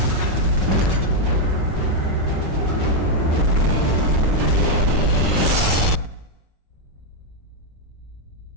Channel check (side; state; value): left; late; 5.4 ms